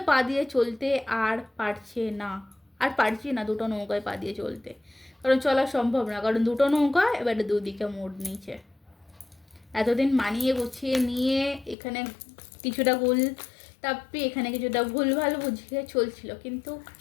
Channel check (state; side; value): drops out; right; at 11.8 s